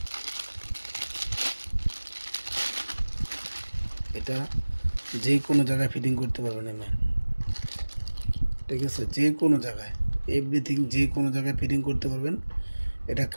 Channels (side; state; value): both; inverted; correlation -1.00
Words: এটা যে কোনো জায়গায় ফিটিং করতে পারবেন এমন, ঠিক আছে, যে কোনো জায়গায়, এভরিথিং যে কোনো জায়গায় ফিটিং করতে পারবেন। এটা